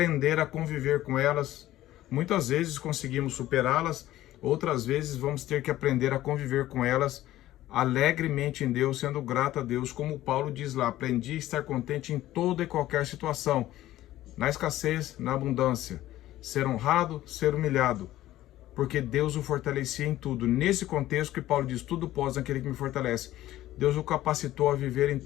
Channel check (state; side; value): quieter; right; 14.7 dB